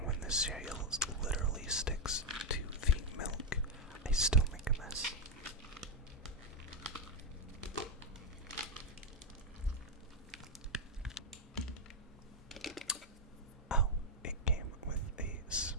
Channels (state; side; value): normal; both; correlation 0.01